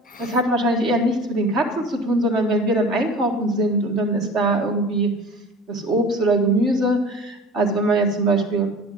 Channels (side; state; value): both; normal; correlation 0.41